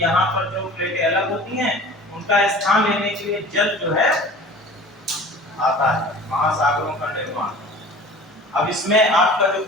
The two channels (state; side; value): normal; both; correlation 0.42